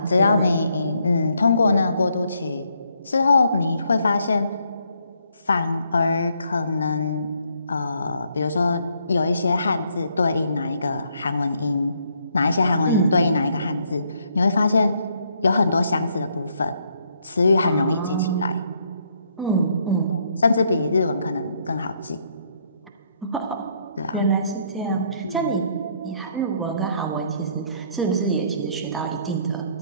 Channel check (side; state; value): both; inverted; correlation -0.71